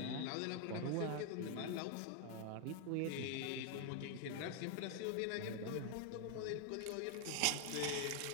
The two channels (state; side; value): different; both; correlation 0.00